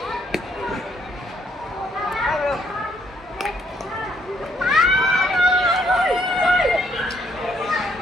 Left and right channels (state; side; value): normal; both; correlation 0.70